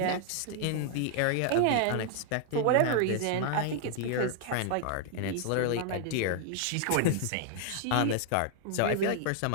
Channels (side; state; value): both; different; correlation 0.00